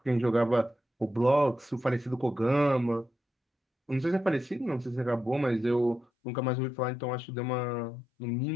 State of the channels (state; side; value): drops out; right; at 6.1 s